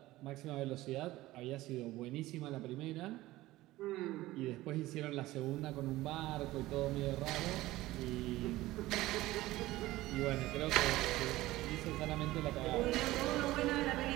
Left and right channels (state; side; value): quieter; left; 17.4 dB